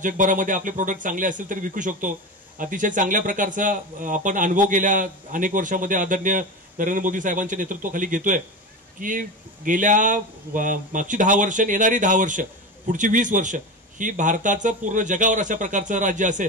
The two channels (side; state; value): both; normal; correlation 0.23